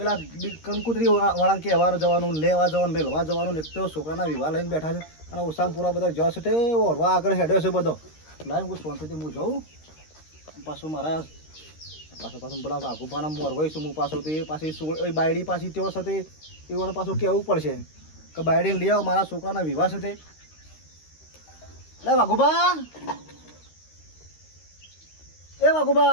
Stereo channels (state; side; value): late; right; 13 ms